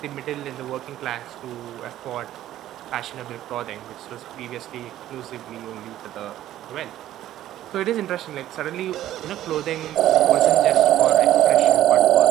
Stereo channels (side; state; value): left; quieter; 13.1 dB